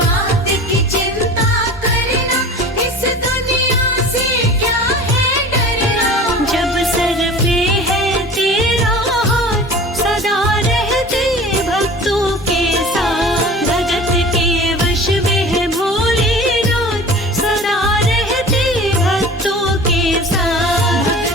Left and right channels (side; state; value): both; normal; correlation 0.40